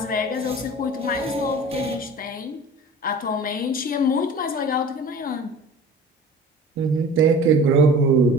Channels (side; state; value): both; normal; correlation 0.41